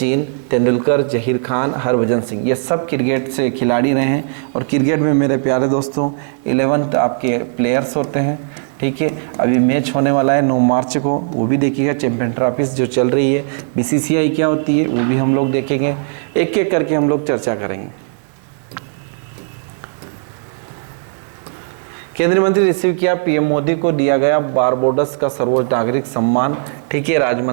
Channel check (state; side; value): silent; left; digital silence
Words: तेंदुलकर, जहीर खान, हरभजन सिंह, ये सब क्रिकेट से खिलाड़ी रहे हैं। और क्रिकेट में मेरे प्यारे दोस्तों 11 आपके प्लेयर्स होते हैं। ठीक है, अभी मैच होने वाला है 9 मार्च को, वो भी देखिएगा। चैंपियन ट्रॉफीज जो चल रही है, बीसीसीआई क्या होती है वो भी हम लोग देखेंगे। एक एक करके हम लोग चर्चा करेंगे। केंद्रीय मंत्री रिसीव किया पीएम मोदी को दिया गया बारबोडस का सर्वोच्च नागरिक सम्मान। ठीक है, राज्य